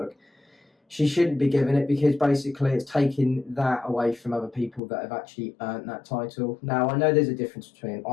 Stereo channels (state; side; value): drops out; right; at 4.8 s